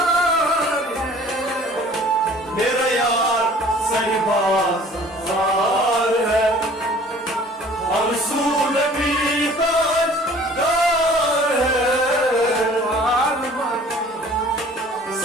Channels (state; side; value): normal; both; correlation 0.50